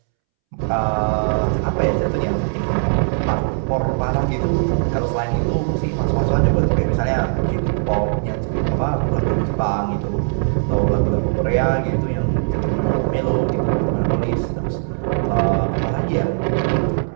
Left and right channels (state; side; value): silent; left; 66 dB below the other